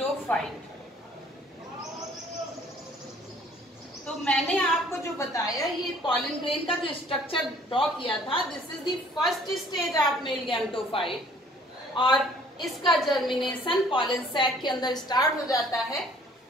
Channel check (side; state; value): both; normal; correlation 0.56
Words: तो मैंने आपको जो बताया ये पॉलन ग्रेन का जो स्ट्रक्चर ड्रॉ किया था, this is the first stage of male gametophyte और इसका जर्मिनेशन पॉलन सैक के अंदर स्टार्ट हो जाता है।